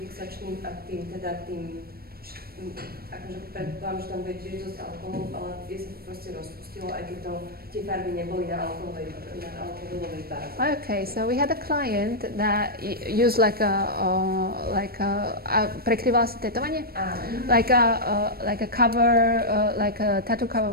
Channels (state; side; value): late; left; 0.44 ms